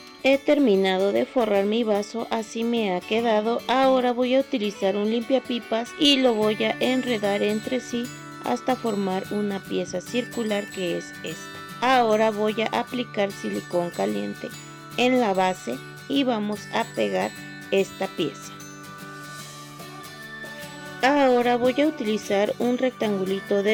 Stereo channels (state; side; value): identical; both; correlation 1.00